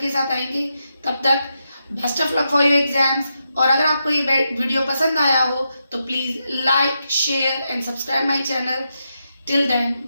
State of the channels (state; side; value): inverted; both; correlation -0.85